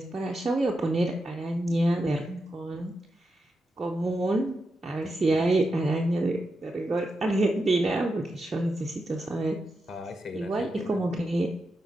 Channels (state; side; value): normal; both; correlation 0.87